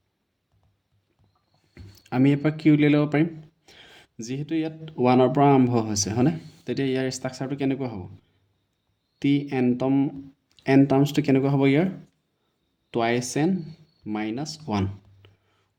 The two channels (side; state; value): both; identical; correlation 1.00